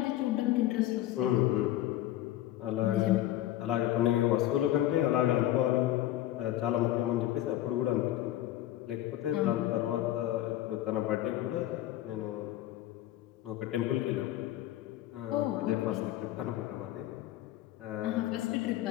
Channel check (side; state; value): right; quieter; 13.9 dB